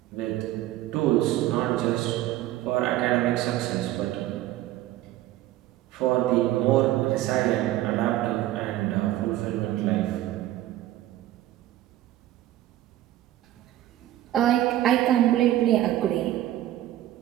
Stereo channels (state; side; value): quieter; left; 14.3 dB